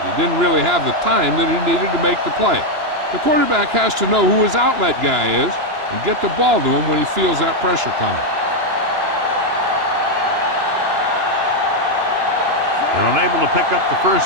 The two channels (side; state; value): left; late; 2.9 ms